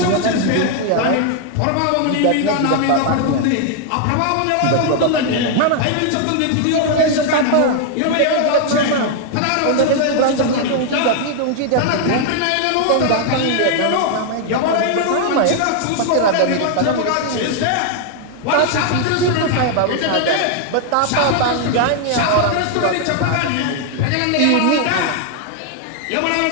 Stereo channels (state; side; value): different; both; correlation 0.00